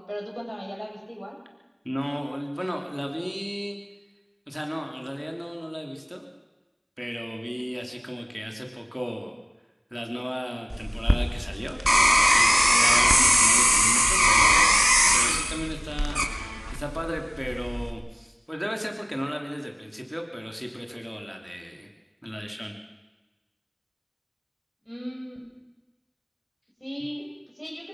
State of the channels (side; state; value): both; identical; correlation 1.00